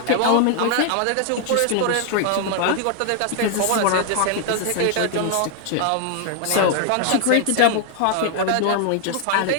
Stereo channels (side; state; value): both; different; correlation 0.00